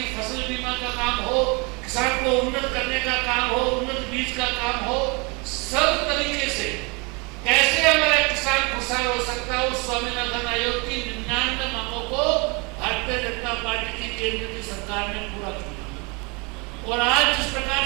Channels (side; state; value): left; quieter; 28.7 dB